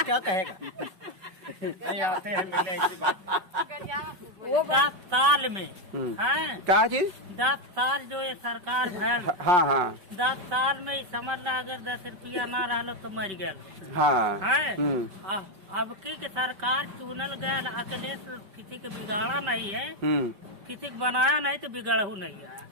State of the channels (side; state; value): left; late; 5.2 ms